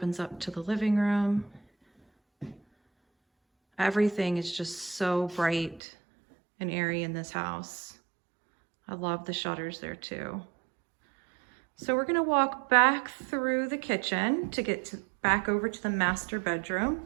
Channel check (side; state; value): left; drops out; at 5.8 s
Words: up to the living room. Everything is just so bright and airy in this house. I love the shutters there too. So we're gonna walk back through the kitchen to get back over to the master bedroom.